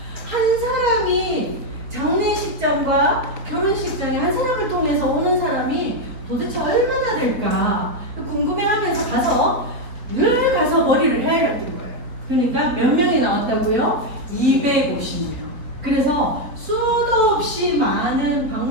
한 사람이 장례식장과 결혼식장에 한 사람을 통해서 오는 사람이 도대체 얼마나 될까 궁금해하면서 늘 가서 머리를 헤아렸던 거예요. 그러니까 몇 명이 나왔다고요? 250명. 그래서 수도 없이 많은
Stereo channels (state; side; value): late; left; 4.5 ms